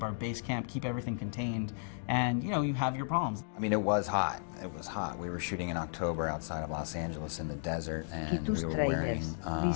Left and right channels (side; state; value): right; silent; digital silence